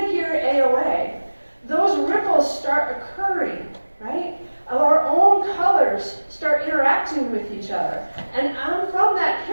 here at AOA, those ripples start occurring, right? Our own colors start interacting with each other. And from that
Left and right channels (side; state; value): both; inverted; correlation -1.00